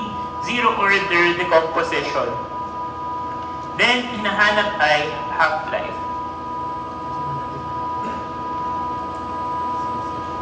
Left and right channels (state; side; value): identical; both; correlation 1.00